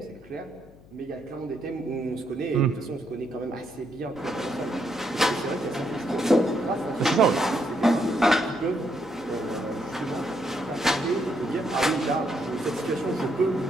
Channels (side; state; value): left; noise; hum, 23 dB below the sound